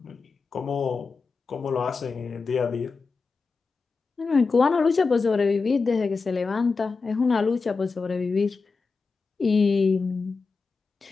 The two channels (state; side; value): quieter; right; 4.5 dB